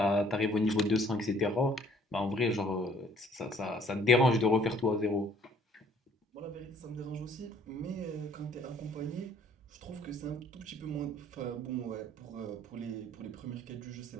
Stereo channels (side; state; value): both; normal; correlation 0.59